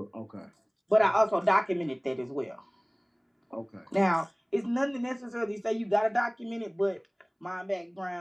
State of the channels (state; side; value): identical; both; correlation 1.00